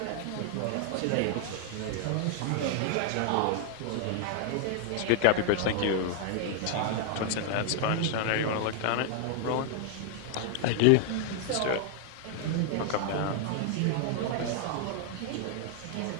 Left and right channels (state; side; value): different; both; correlation 0.00